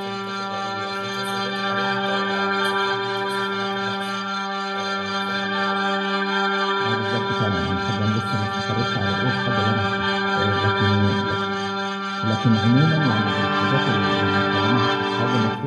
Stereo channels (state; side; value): identical; both; correlation 1.00